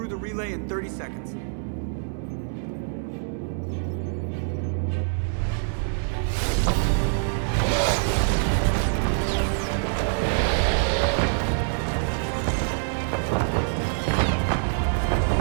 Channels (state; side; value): silent; left; 62 dB below the other